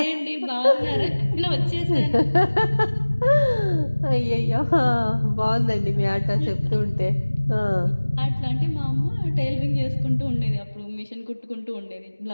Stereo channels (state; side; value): inverted; both; correlation -1.00